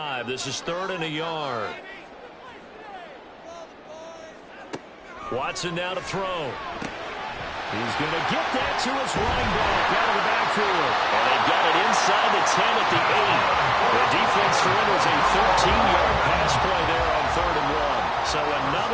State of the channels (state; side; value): identical; both; correlation 1.00